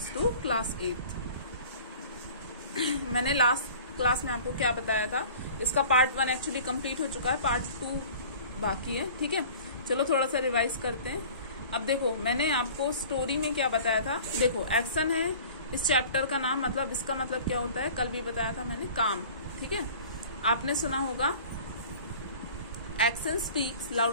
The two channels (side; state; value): both; inverted; correlation -0.44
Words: to class 8th. मैंने last class में आपको क्या बताया था, इसका part 1 actually complete हो चुका है, पार्ट 2 बाकी है. ठीक है, चलो थोड़ा सा रिवाइज करते हैं. अब देखो, मैंने आपको स्टोरी में क्या बताया था. देखो, एक्शन है इस चैप्टर का नाम, मतलब इसका मतलब क्या होता है, कल भी बताया था मैंने, काम. ठीक है, आपने सुना होगा action speaks